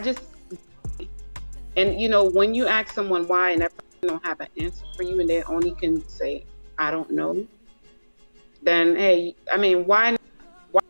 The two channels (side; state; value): both; inverted; correlation -1.00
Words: and when you ask someone why and that person don't have an answer for you and they only can say, I don't know, then, hey, I mean, why